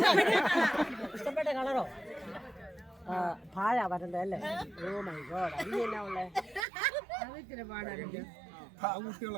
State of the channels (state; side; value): drops out; left; at 6.7 s